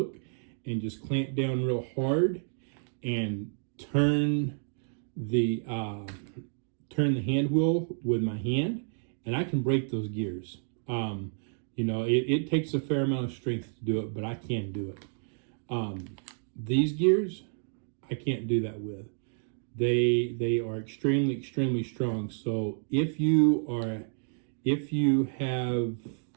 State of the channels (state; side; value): silent; left; digital silence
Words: and just clamp down real hard, and turn the hand wheel with my hand, and I can break those gears. You know, it takes a fair amount of strength to do it, but I can do it. These gears, I can't do that with. They are extremely strong. So if you